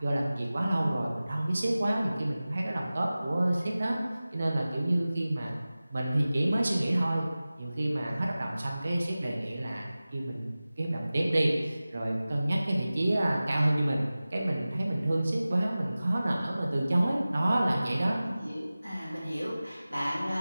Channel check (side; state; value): both; inverted; correlation -0.97